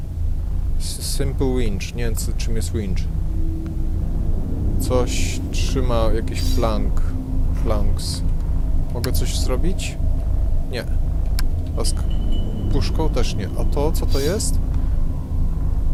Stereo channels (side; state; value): both; identical; correlation 1.00